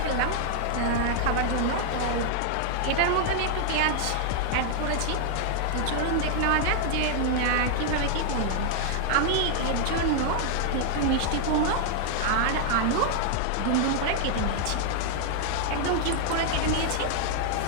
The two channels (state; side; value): different; both; correlation 0.00